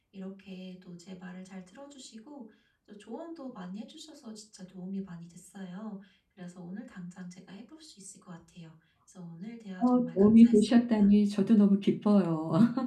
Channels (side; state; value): both; identical; correlation 1.00